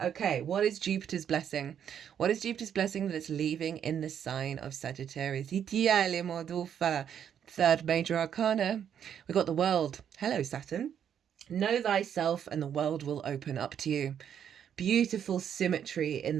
Okay, what is Jupiter's blessing? What is Jupiter's blessing that it's leaving in the sign of Sagittarius? 3rd major arcana, we got the World. Hello, Saturn. Know thyself and the world will open up to you. Beautiful symmetry in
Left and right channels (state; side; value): quieter; left; 8.8 dB